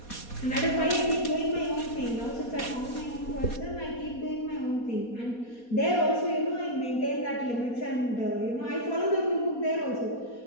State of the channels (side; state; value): right; late; 4.2 ms